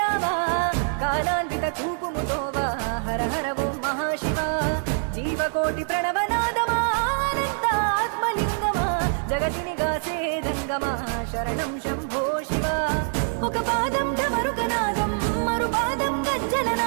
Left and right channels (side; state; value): left; silent; digital silence